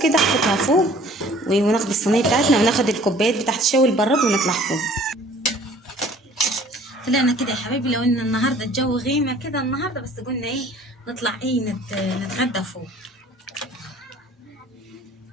كده، احطها فوق وناخد الصينيه بتاعتنا وناخد الكوبايات بتاعت الشاي البراد ونطلع فوق. طلعنا كده يا حبايبي، لو ان النهارده الجو غيمه كده النهارده، بس قلنا ايه نطلع ايه نتغدى فوق.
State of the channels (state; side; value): normal; both; correlation 0.52